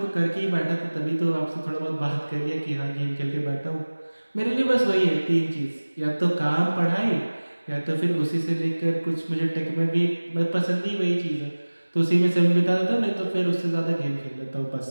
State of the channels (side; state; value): both; inverted; correlation -1.00